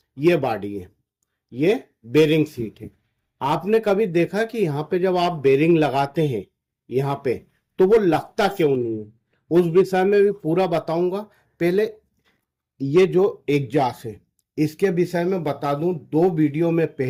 ये बॉडी है, ये बेरिंग सीट है। आपने कभी देखा कि यहाँ पे जब आप बेरिंग लगाते हैं यहाँ पे, तो वो लगता क्यों नहीं है? उस विषय में भी पूरा बताऊंगा। पहले ये जो एग्जॉस्ट है, इसके विषय में बता दूं। 2 वीडियो में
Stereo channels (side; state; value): both; identical; correlation 1.00